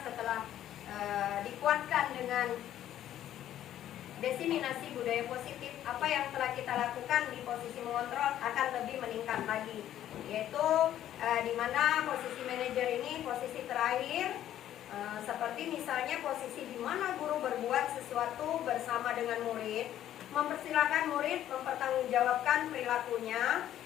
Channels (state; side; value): quieter; right; 11.8 dB